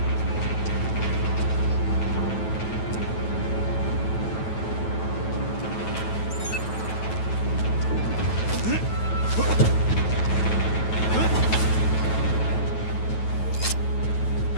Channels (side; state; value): right; late; 9.2 ms